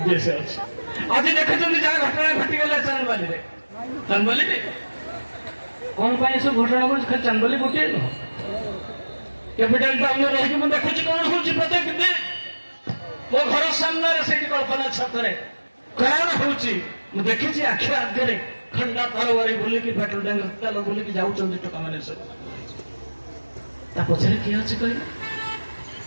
ଅଛି। ଆଜି ଦେଖୁଛନ୍ତି ଯାହା ଘଟଣା ଘଟିଗଲା ଚାନ୍ଦବାଲିରେ, ଚାନ୍ଦବାଲିରେ କଣ ପାଇଁ ଏସବୁ ଘଟଣା ଘଟୁଛି? ଖାଲି ଚାନ୍ଦବାଲି ଗୋଟିଏ ନୁହଁ, କ୍ୟାପିଟାଲ ଟାଉନରେ ରହିକି ମୁଁ ଦେଖୁଛି କଣ ହଉଛି ପ୍ରତ୍ୟେକ ଦିନ। ମୋ ଘର ସାମ୍ନାରେ ସେଇଠି କଳ୍ପନା ଛକରେ କଣ ହଉଛି ମୁଁ ଦେଖିଛି ଆଖି ଆଗରେ। ଖଣ୍ଡା ତରବାରୀ ବୁଲିକି ପେଟ୍ରୋଲ ଟ୍ୟାଙ୍କର ତେଲ ବୁଲିକି ଯାଉଛନ୍ତି ଟୋକାମାନେ ସବୁ। ତା ପଛରେ କିଏ ଅଛି କହିଲେ?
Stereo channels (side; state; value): both; inverted; correlation -1.00